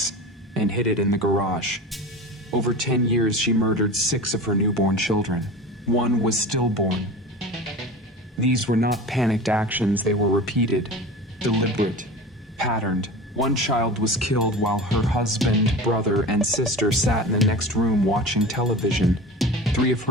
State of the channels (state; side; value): normal; both; correlation 0.33